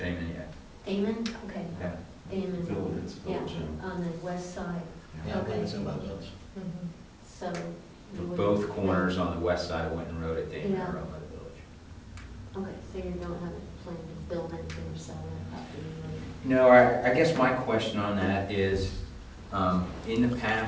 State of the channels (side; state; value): both; identical; correlation 1.00